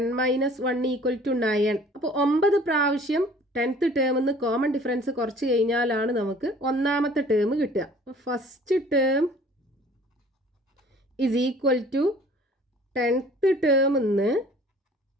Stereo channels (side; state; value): both; normal; correlation 0.51